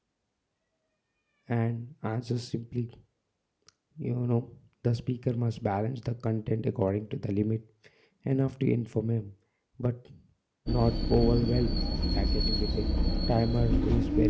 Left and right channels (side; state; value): both; identical; correlation 1.00